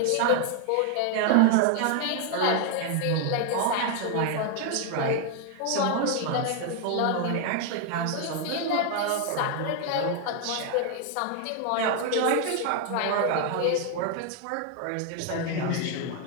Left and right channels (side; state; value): both; different; correlation 0.01